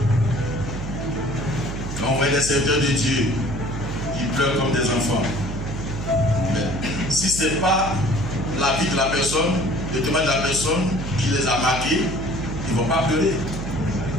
Quand on voit des serviteurs de Dieu qui pleurent comme des enfants. Mais si ce n'est pas la vie de la personne, le témoignage de la personne qui les a marqués, ils ne vont pas pleurer.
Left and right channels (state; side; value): noise; right; hum, 7 dB below the sound